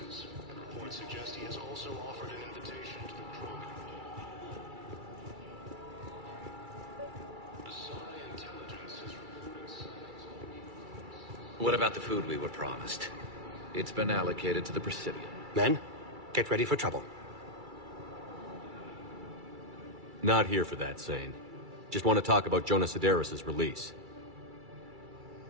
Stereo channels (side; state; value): left; late; 2.3 ms